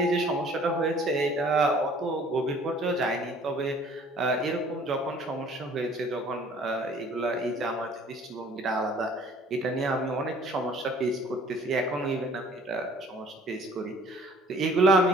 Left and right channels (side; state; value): both; normal; correlation 0.54